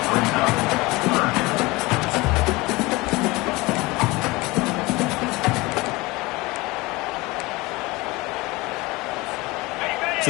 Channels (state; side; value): quieter; right; 22.4 dB